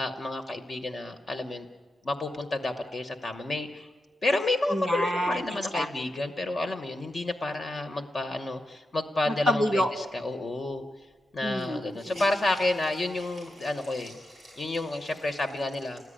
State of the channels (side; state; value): both; normal; correlation 0.88